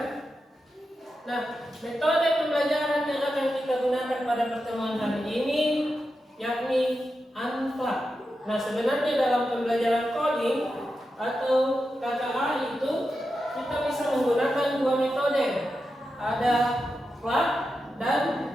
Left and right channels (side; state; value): both; normal; correlation 0.89